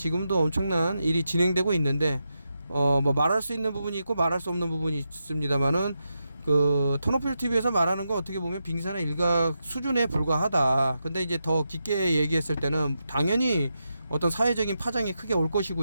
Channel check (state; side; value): inverted; both; correlation -0.87